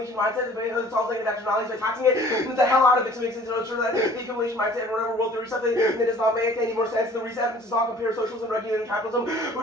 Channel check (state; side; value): normal; both; correlation 0.51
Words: mindset. It solves negative externalities by taxing it the hell out of it to make sense of sure that the accumulation mindset and whatever world theory stuff that does not make any more sense. The reason evidence does not compare socialism and regulated capitalism,